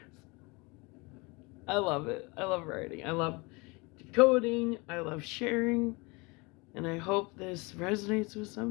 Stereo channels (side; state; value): right; quieter; 26.8 dB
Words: I love it. I love writing. I love decoding. I love sharing. And I hope this resonates with